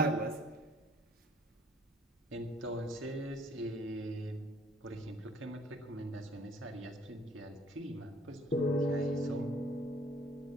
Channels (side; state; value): both; normal; correlation 0.57